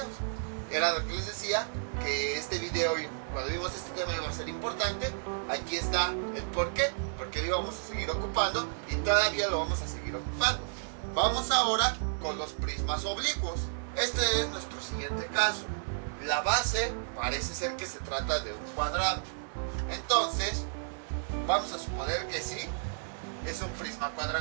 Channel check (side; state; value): left; silent; 56 dB below the other